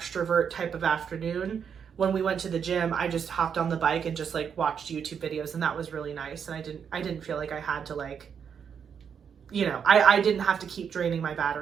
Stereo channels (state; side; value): quieter; left; 7.3 dB